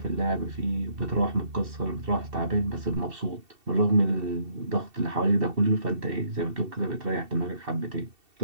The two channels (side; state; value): left; late; 2.7 ms